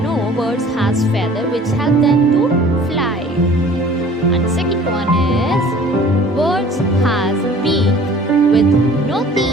birds has feather which help them to fly. And second one is birds has beak with no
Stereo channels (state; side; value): normal; both; correlation 0.49